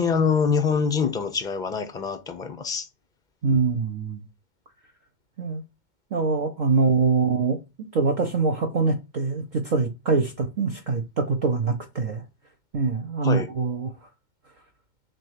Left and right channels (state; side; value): late; left; 2.2 ms